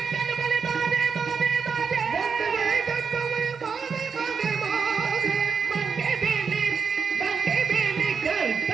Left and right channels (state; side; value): quieter; left; 5.8 dB